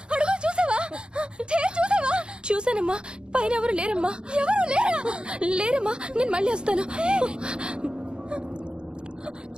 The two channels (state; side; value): late; left; 0.051 ms